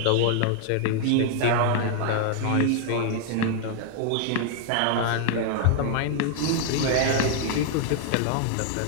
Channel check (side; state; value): both; different; correlation 0.00